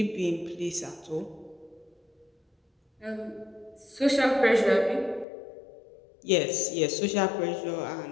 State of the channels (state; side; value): drops out; right; at 5.2 s